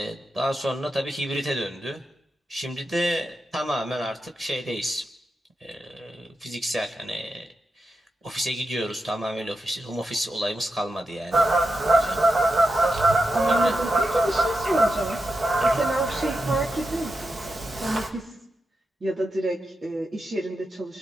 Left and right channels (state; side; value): normal; both; correlation 0.88